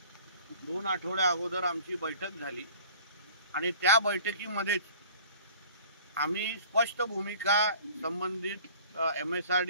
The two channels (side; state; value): both; inverted; correlation -0.48